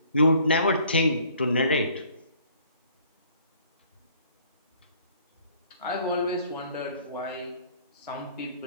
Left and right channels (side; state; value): both; inverted; correlation -0.57